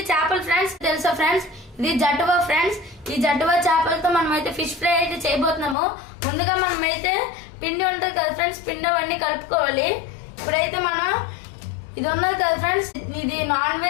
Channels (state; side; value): drops out; right; at 5.8 s